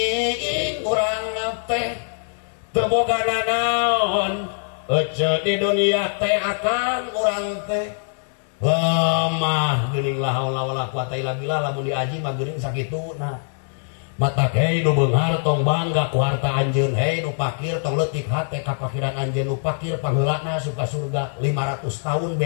urang teh teu boga nanaon ece di dunia teh akan urang teh lemah geuning la haula wala quwata illa billah lamun diaji mah geuning sakituna mata hei nu beunghar tong bangga ku harta anjeun hei nu pakir tong leutik hate ka pakiran anjeun nu pakir pangheulana suka surga 500 tahun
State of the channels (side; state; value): right; silent; 61 dB below the other